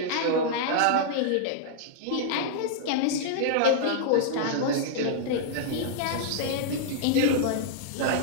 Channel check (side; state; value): both; different; correlation -0.01